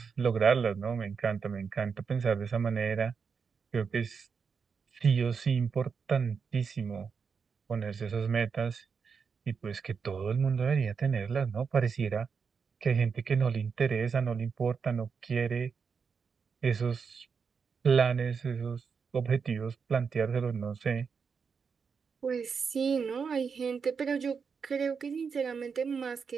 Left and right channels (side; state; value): left; quieter; 5.9 dB